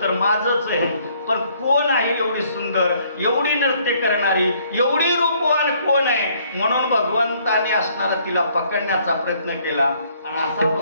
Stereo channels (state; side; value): inverted; both; correlation -0.64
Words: तर माझंच आहे, पण कोण आहे एवढी सुंदर, एवढी नृत्य करणारी, एवढी रूपवान कोण आहे? म्हणून भगवंताने असणारा तिला पकडण्याचा प्रयत्न केला. आणि असा